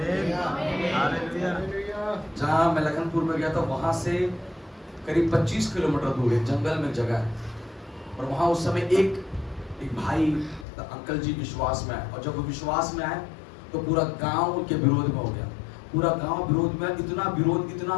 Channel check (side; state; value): right; drops out; at 10.7 s